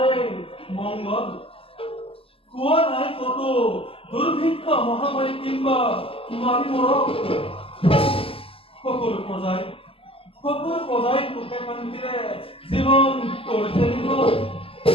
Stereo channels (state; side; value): late; right; 0.27 ms